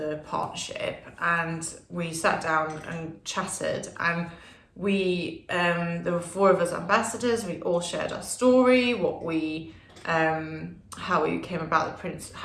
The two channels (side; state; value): both; identical; correlation 1.00